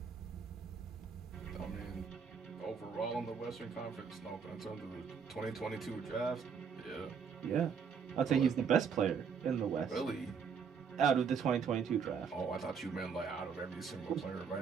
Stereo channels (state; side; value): quieter; left; 6.4 dB